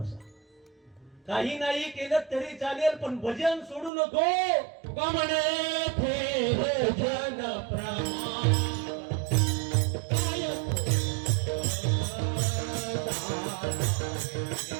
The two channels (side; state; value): left; drops out; at 3.9 s